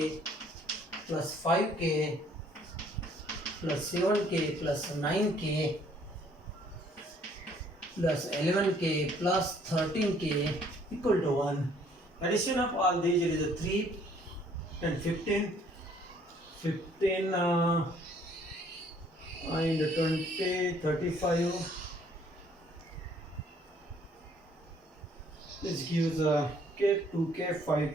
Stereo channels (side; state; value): both; normal; correlation 0.61